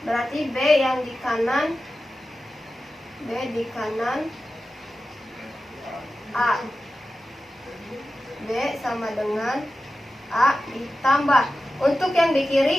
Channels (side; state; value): both; normal; correlation 0.93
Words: Berarti B yang di kanan, B di kanan A, B sama dengan A ditambah. Untuk yang di